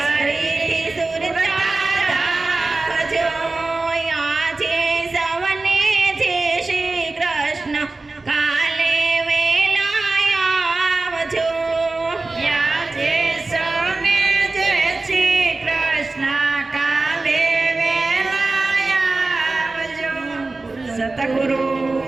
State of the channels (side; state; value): left; quieter; 3.4 dB